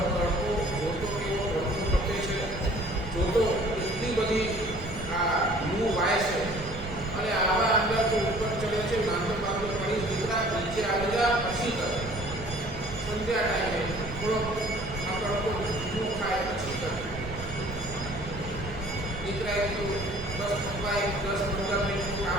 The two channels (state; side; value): noise; right; rumble, 11 dB below the sound